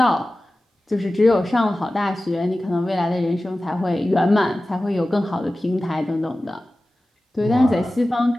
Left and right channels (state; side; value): normal; both; correlation 0.96